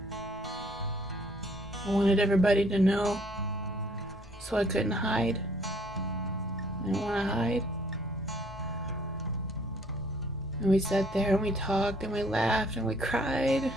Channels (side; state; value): both; normal; correlation 0.61